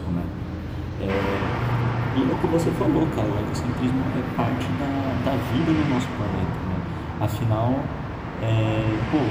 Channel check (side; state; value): both; identical; correlation 1.00